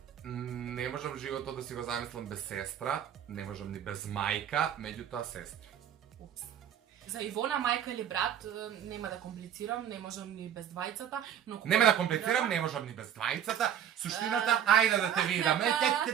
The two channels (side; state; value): left; quieter; 9.7 dB